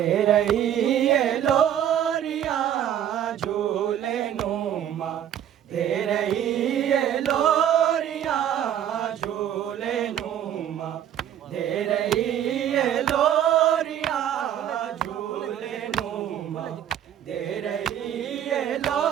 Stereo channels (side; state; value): left; quieter; 10.3 dB